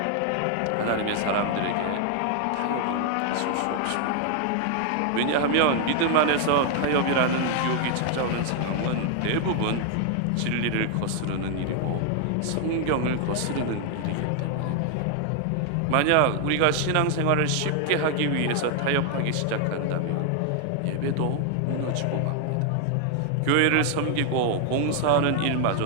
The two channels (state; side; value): different; both; correlation 0.00